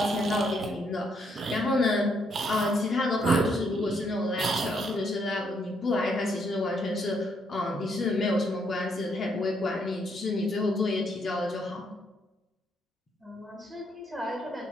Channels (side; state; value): both; normal; correlation 0.73